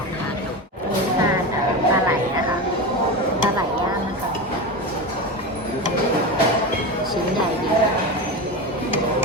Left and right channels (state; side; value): normal; both; correlation 0.22